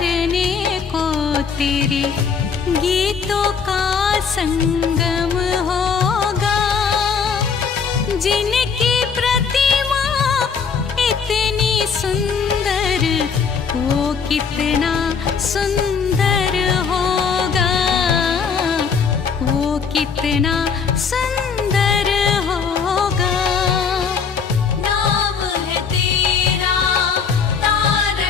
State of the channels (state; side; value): quieter; right; 6.1 dB